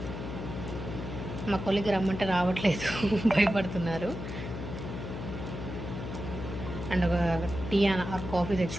మా కొలికి రమ్మంటే రావట్లేదు, భయపడుతున్నారు. అండ్ ఒక టీ ఆర్ కాఫీ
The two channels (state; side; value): noise; left; hum, 7 dB below the sound